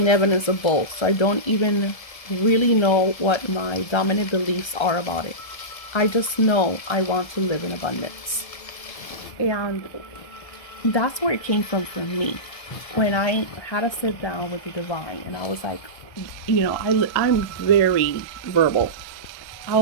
evidence of both, so I don't even really know what my dominant beliefs are about it. I just know I want to live in abundance. And that's where it came from for me. When I had to sit down with the divine, and I was like, I'm very verbal. I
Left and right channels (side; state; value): right; late; 1.2 ms